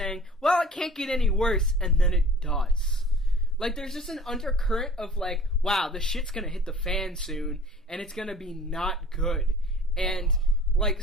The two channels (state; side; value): normal; both; correlation 0.47